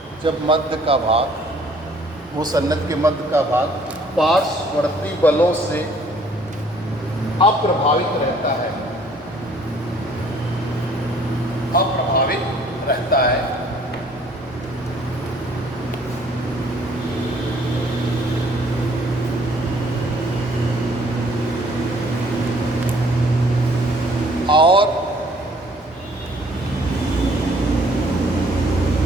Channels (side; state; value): both; normal; correlation 0.59